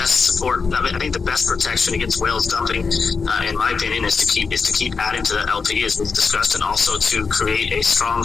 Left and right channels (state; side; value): quieter; right; 5.0 dB